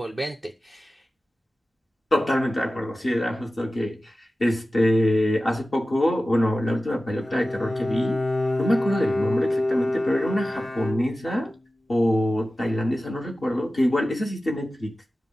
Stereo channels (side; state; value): both; normal; correlation 0.95